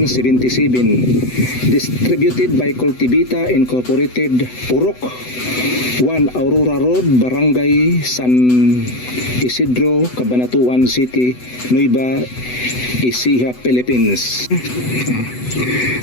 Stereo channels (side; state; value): right; late; 8.0 ms